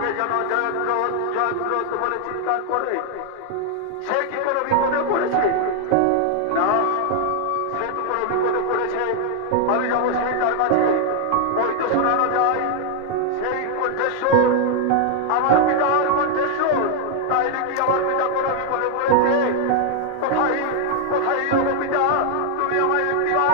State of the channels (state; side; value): different; both; correlation 0.00